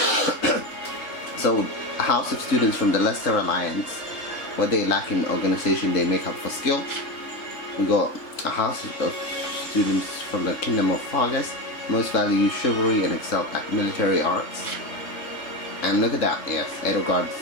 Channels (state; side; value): late; right; 3.7 ms